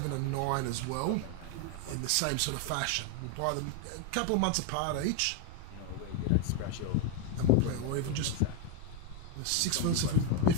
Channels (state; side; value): different; both; correlation 0.02